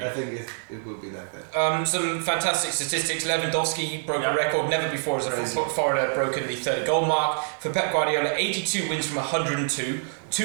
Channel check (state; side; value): silent; left; digital silence